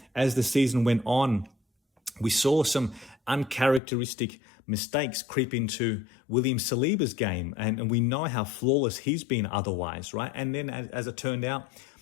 as the season went on, we saw some uncharacteristic mistakes creep into William Saliba's game, and we know how flawless he's been otherwise, right? And then as it turned out,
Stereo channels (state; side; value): drops out; right; at 3.8 s